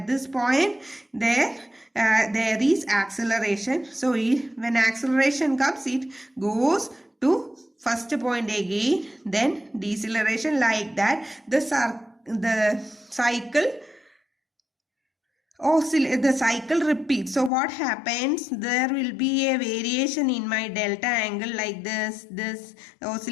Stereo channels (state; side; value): drops out; right; at 17.5 s